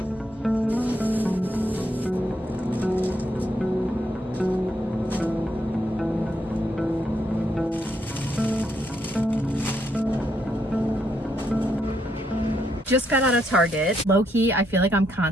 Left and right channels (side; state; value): both; normal; correlation 0.76